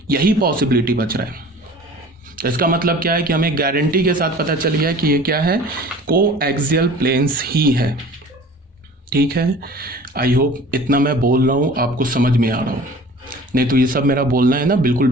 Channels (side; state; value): both; normal; correlation 0.44